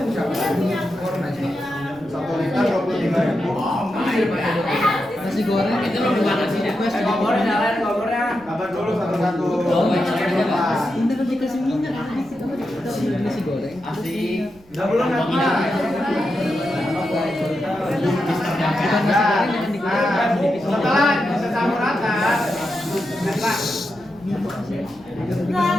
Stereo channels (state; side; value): noise; right; rumble, 27 dB below the sound